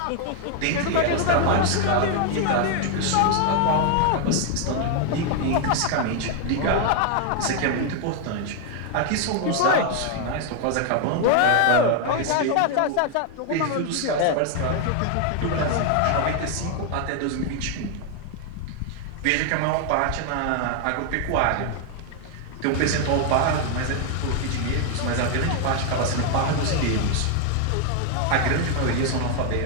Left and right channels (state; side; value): different; both; correlation 0.00